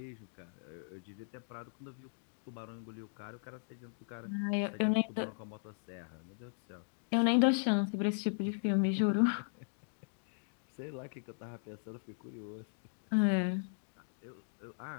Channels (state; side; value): silent; right; digital silence